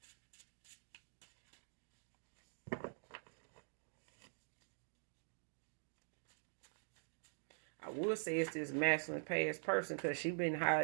I would say it's this masculine past person, because she been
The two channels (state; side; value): silent; left; digital silence